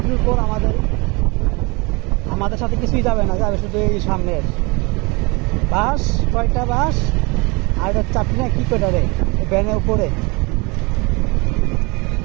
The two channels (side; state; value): left; quieter; 27.5 dB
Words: পর আমাদের সাথে কিছুই যাবে না, যাবে শুধু এই সামনের বাস। কয়টা বাস আর এটা চাপি না কি কয়টা রে ভ্যানের উপরে।